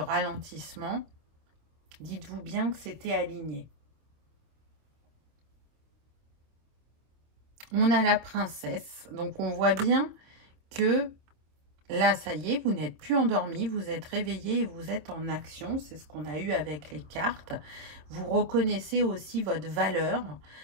dites-vous bien que c'était aligné. On a la princesse, donc on voit bien que là, ça y est, vous n'êtes plus endormi, vous êtes réveillé et vous êtes en action. C'est ce qu'on a eu avec les cartes. Vous reconnaissez aussi votre valeur.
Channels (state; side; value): late; left; 26 ms